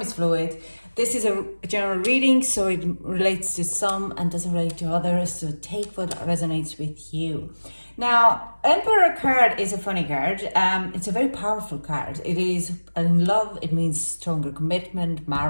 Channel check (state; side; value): inverted; both; correlation -1.00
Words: is fluid. This is a general reading, so it relates to some and doesn't relate to others. So take what resonates with you. Now, Emperor card is a funny card. It's a very powerful card. It is in love. It means stronger commitment,